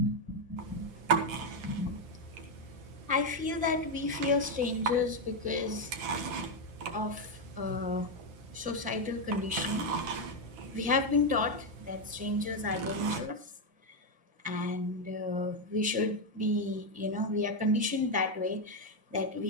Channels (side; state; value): left; late; 5.9 ms